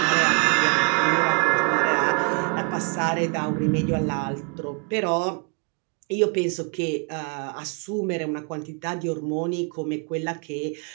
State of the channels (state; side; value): quieter; left; 33.4 dB